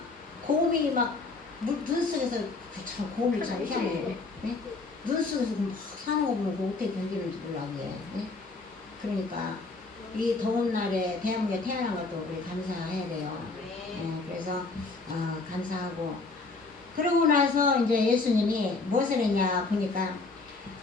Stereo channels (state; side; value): quieter; right; 3.7 dB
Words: 곰이 막 눈 속에서 참 곰이 참 희한해요. 네? 눈 속에서 막 사는 거 보면 어떻게 견디는지 몰라 그게. 네? 그러니까 이 더운 날에 대한민국에 태어난 것도 우리 감사해야 돼요. 네, 그래서 감사하고, 그러고 나서 이제 예수님이 무엇을 했냐 보니까